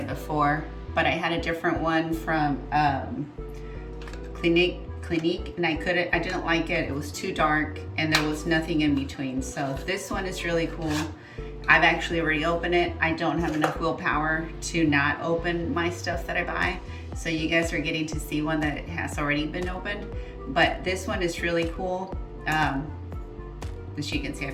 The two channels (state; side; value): identical; both; correlation 1.00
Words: before, but I had a different one from Clinique, and I didn't like it. It was too dark and there was nothing in between. So this one is really cool. I've actually already opened it. I don't have enough willpower to not open my stuff that I buy. So you guys are getting to see one that has already been opened. But this one is really cool. As you can see,